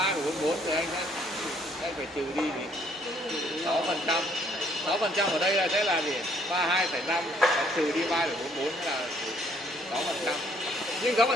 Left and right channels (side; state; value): both; normal; correlation 0.65